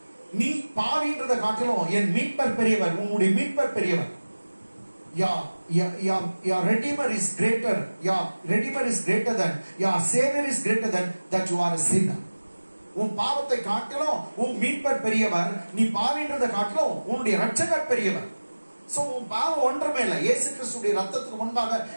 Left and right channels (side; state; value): both; inverted; correlation -1.00